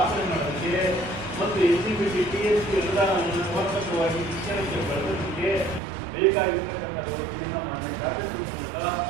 ಮಾಡೋದಕ್ಕೆ ಮತ್ತು SCBT TSP ಅನುದಾನವನ್ನು ಸಮರ್ಪಕವಾಗಿ ಶಿಕ್ಷಣಕ್ಕೆ ಬಳಸೋದಕ್ಕೆ ಬೇಕಾಗಿರ್ತಕ್ಕಂಥ ವ್ಯವಸ್ಥೆಯನ್ನು ಮಾನ್ಯ ಶಾಸಕರ ಮೂಲಕ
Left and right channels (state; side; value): drops out; left; at 5.8 s